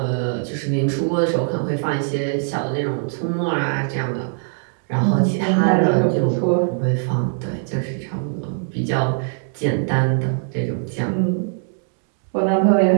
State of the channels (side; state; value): left; silent; digital silence